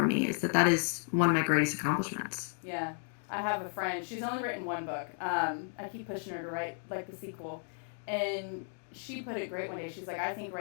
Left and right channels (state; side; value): silent; right; 55 dB below the other